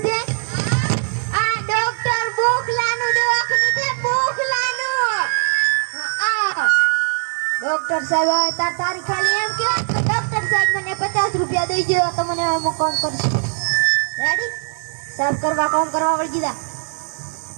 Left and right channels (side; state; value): left; silent; digital silence